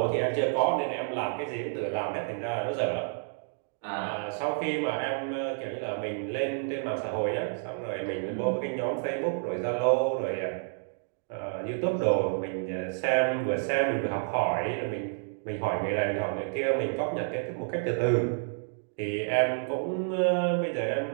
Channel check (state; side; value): silent; left; digital silence